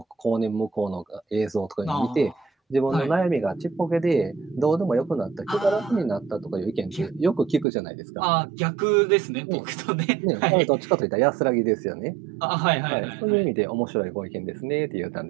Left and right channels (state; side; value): drops out; left; at 7.7 s